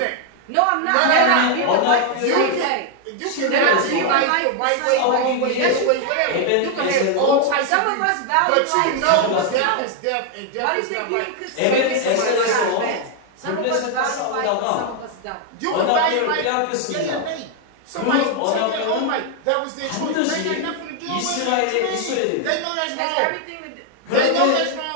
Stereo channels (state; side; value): different; both; correlation 0.00